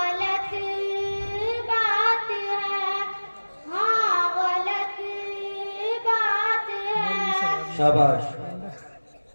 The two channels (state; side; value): inverted; both; correlation -1.00